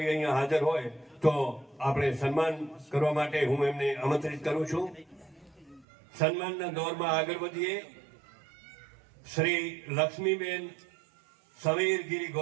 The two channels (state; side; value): drops out; left; at 5.9 s